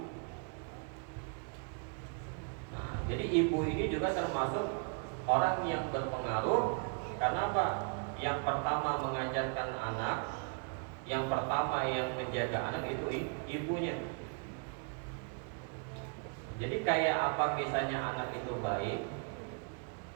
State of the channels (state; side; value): quieter; left; 39.1 dB